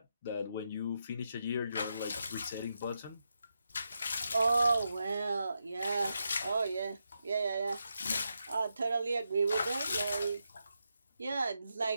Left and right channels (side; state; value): both; inverted; correlation -0.85